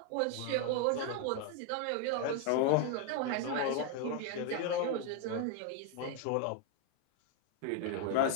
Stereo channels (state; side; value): different; both; correlation 0.00